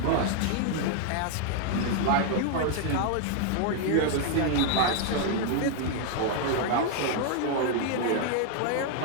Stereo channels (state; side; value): different; both; correlation 0.00